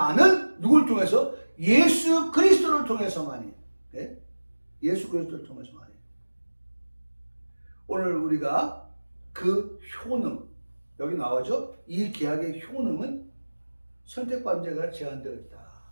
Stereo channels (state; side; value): inverted; both; correlation -1.00